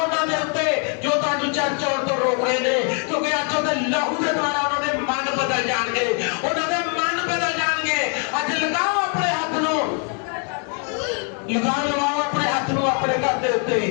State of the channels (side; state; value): right; quieter; 38.9 dB